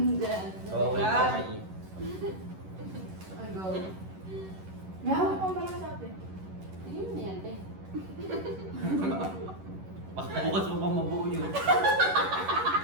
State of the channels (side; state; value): left; late; 11 ms